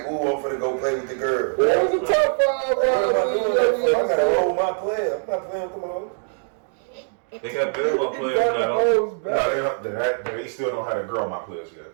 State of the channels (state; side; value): silent; left; digital silence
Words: ooh, I'm finna go play with the girl. That was a top 5. I gotta roll my player. I'm not playing with them hoes. They got basketball players now. No, they still don't have to grow my players yet.